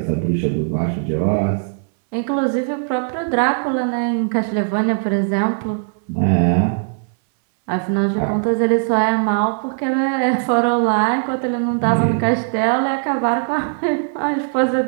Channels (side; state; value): left; silent; 66 dB below the other